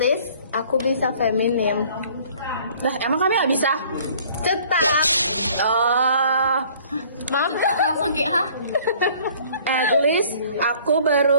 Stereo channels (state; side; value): inverted; both; correlation -0.54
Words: aku bisa feminim. Lah emang kami nggak bisa? Cetak. Oh. Langsung kayak hah? At least aku